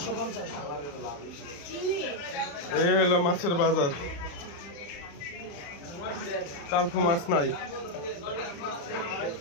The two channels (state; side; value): late; right; 35 ms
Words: এই হলো মাছের বাজার। তারপর মাছ নাই,